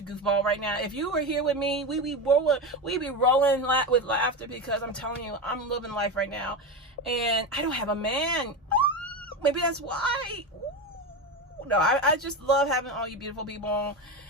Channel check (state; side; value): normal; both; correlation 0.19